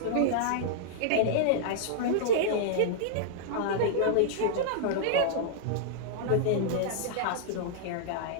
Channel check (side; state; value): both; different; correlation -0.01